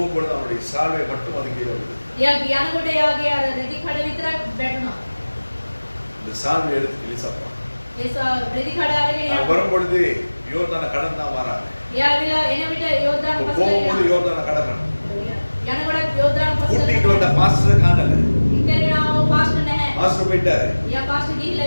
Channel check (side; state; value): both; inverted; correlation -1.00